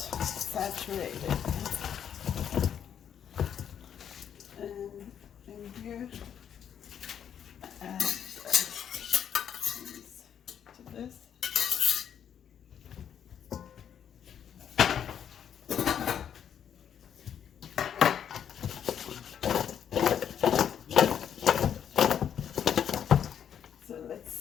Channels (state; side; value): quieter; right; 8.8 dB